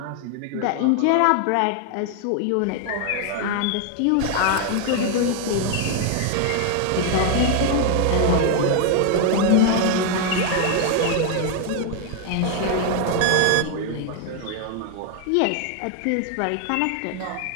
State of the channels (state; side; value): different; both; correlation 0.00